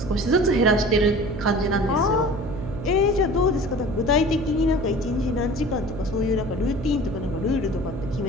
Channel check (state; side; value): noise; right; hum, 8 dB below the sound